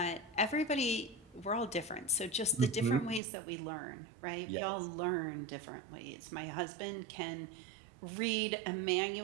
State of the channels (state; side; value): drops out; left; at 3.2 s